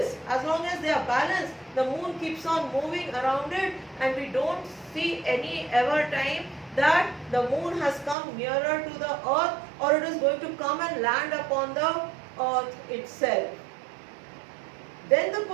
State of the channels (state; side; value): drops out; left; at 8.2 s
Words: as long as they are balanced, the moon keeps on moving around it, and we don't see any ever time that the moon has come nearer to the earth or it is going to come and land upon the earth itself. Then the